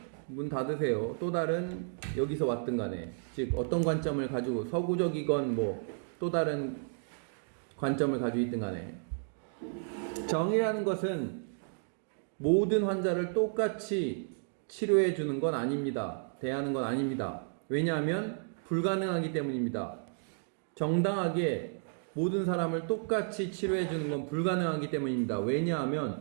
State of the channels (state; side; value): silent; left; digital silence